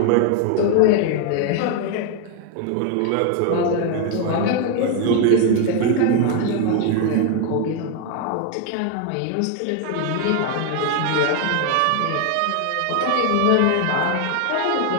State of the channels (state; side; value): different; both; correlation 0.00